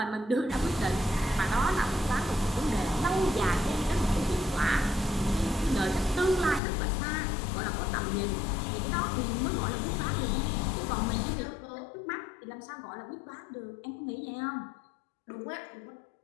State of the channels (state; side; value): drops out; right; at 6.6 s